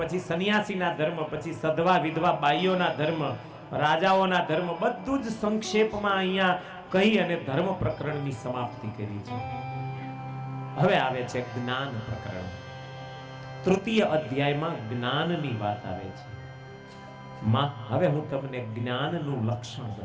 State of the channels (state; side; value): identical; both; correlation 1.00